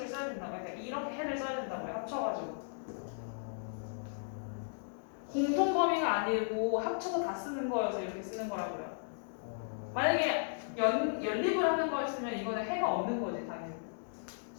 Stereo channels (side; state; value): right; silent; digital silence